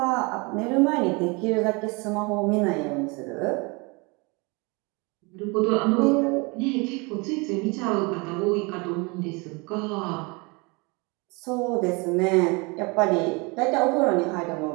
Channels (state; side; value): quieter; left; 28.2 dB